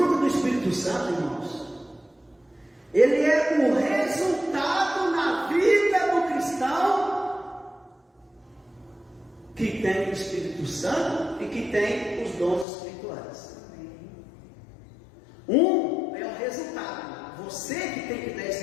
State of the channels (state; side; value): drops out; right; at 12.7 s